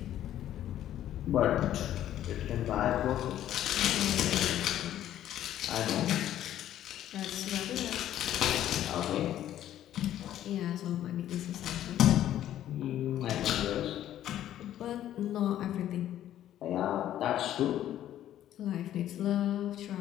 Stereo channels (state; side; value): quieter; right; 12.0 dB